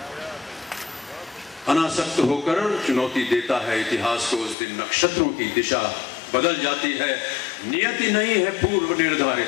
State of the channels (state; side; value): drops out; right; at 4.5 s